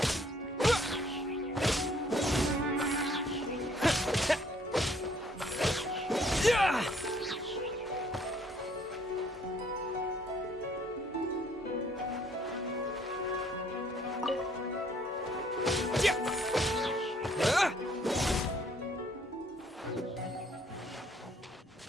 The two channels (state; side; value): normal; both; correlation 0.63